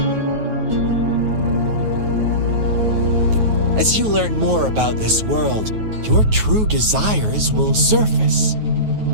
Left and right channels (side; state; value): left; late; 9.3 ms